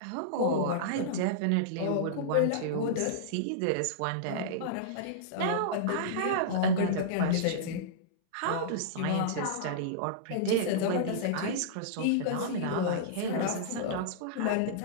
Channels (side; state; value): both; different; correlation -0.03